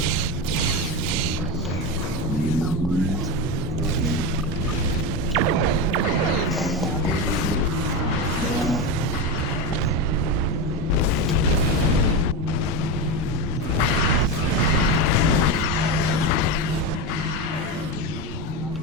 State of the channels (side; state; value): both; normal; correlation 0.16